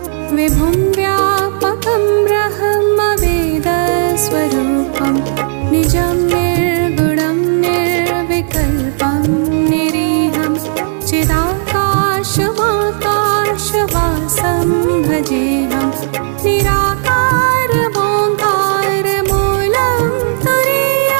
विभुं व्यापकं ब्रह्मवेदस्वरूपं निजं निर्गुणं निर्विकल्पं निरीहं चिदाकाशमाकाशवासं भजेऽहं निराकारमोङ्कारमूलं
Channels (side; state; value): left; silent; 65 dB below the other